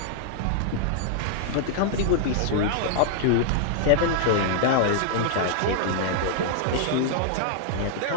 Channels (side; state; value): both; different; correlation -0.01